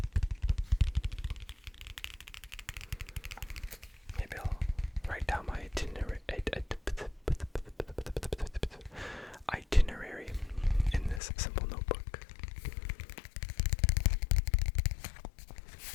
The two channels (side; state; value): right; drops out; at 11.2 s